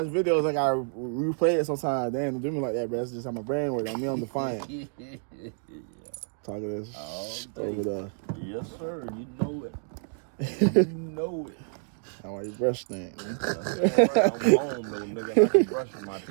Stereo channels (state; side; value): silent; left; digital silence